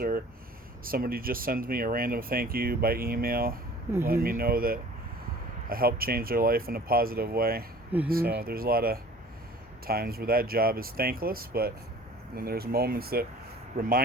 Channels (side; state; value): both; normal; correlation 0.47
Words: somebody just sends me a random thank you by email, letting me know that I helped change their life in a positive way. So there's a lot of times where that job is thankless, but then there's moments that